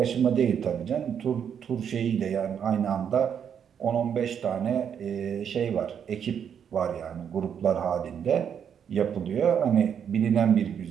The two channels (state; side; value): quieter; left; 8.1 dB